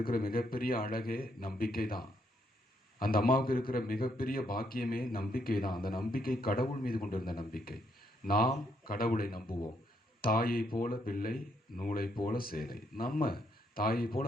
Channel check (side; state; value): both; normal; correlation 0.75